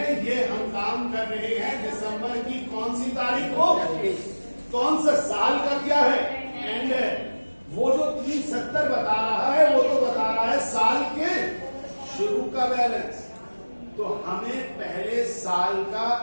ये हम काम कर रहे हैं दिसंबर की कौन सी तारीख को, कौन सा साल का क्या है एंड है, वो जो 370 बता रहा है वो तो बता रहा है साल के शुरू का बैलेंस। तो हमें पहले साल का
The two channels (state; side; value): inverted; both; correlation -1.00